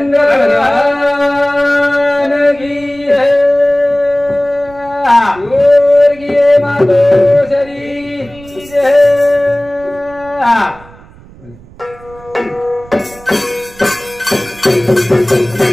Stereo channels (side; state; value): right; noise; rumble, 22 dB below the sound